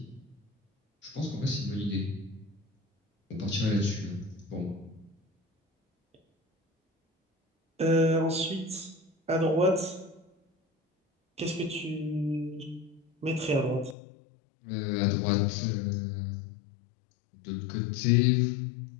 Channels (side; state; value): right; drops out; at 14.0 s